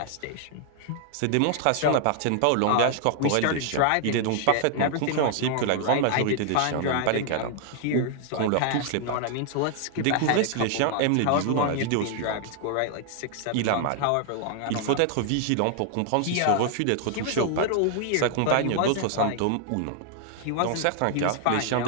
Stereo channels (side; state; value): both; different; correlation 0.00